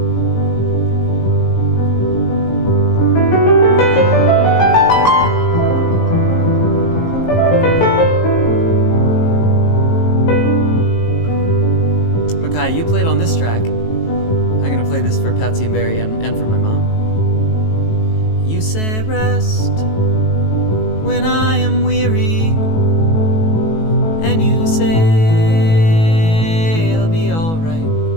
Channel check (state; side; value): late; right; 18 ms